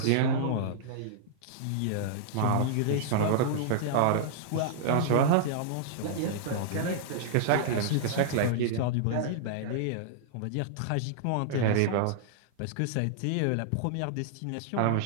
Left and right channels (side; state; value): both; different; correlation -0.02